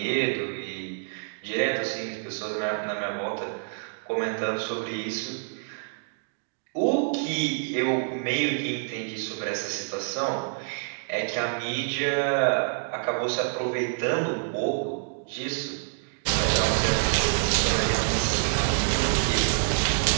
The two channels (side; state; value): left; silent; digital silence